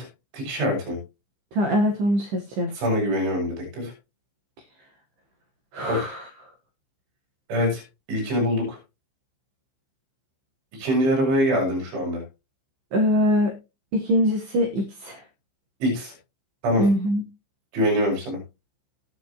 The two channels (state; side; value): late; left; 15 ms